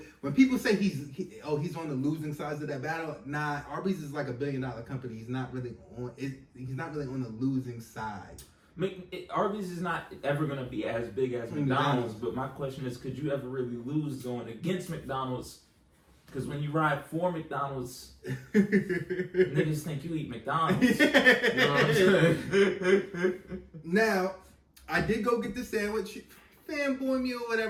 when people say he's on the losing sides of that battle, nah, Arby's is like $1 billion company. He's not really on the losing side. Arby's is not ever going to be as big as McDonald's, but my question is, could you ever really lose going against McDonald's? Because when you ride for McDonald's, niggas think you eat McDonald's. You know what I'm saying? Now, I did go get the sandwich. Fanboy me or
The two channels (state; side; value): identical; both; correlation 1.00